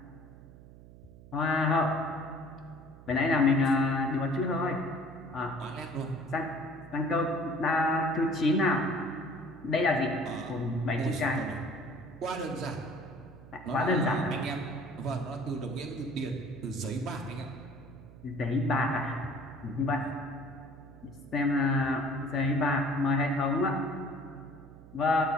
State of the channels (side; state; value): right; noise; hum, 19 dB below the sound